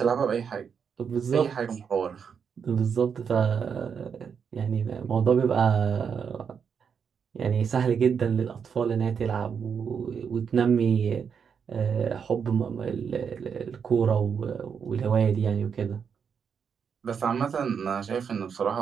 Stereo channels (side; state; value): left; quieter; 6.8 dB